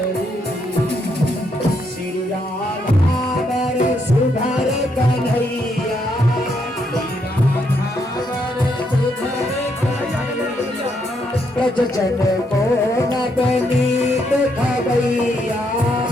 श्री राधावर सुधर कन्हैया, ब्रज जन को नवनीत खबैया,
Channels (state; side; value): normal; both; correlation 0.76